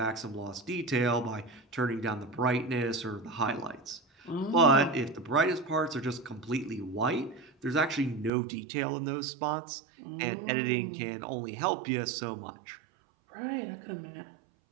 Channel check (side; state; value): left; drops out; at 8.3 s